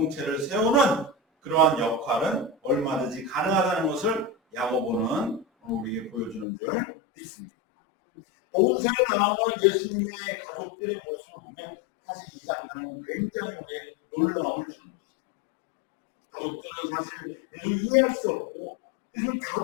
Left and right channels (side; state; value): right; drops out; at 6.5 s